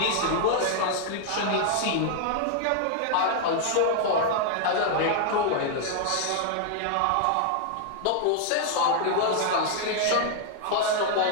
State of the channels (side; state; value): both; different; correlation 0.00